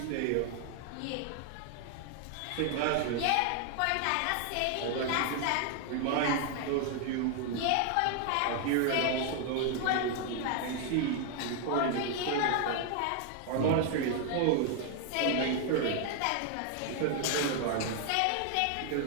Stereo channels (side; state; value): both; different; correlation 0.00